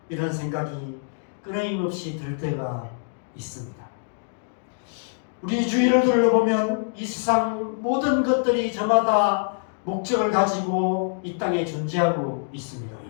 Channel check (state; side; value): silent; right; digital silence